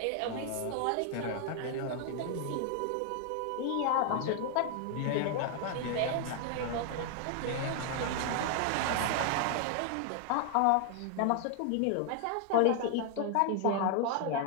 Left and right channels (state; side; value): different; both; correlation 0.00